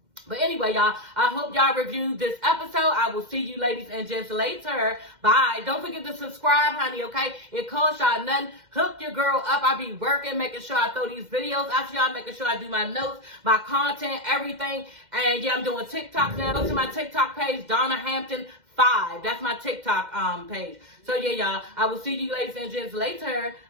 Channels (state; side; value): late; left; 2.1 ms